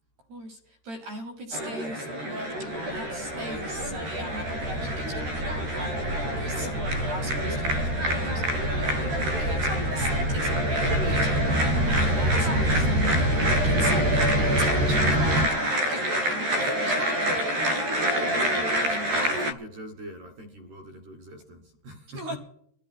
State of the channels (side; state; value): left; late; 13 ms